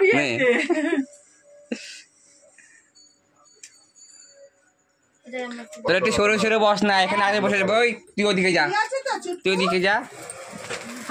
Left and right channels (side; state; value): both; identical; correlation 1.00